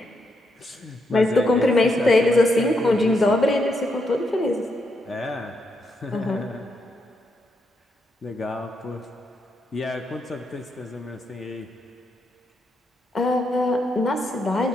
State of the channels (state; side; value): normal; both; correlation 0.80